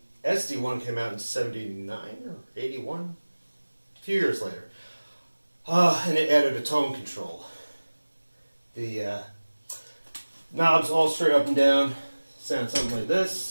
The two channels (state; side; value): inverted; both; correlation -1.00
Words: SD-1 came out in '79 or '81, a few years later. And it added a tone control. The knobs all straight up and down sound something like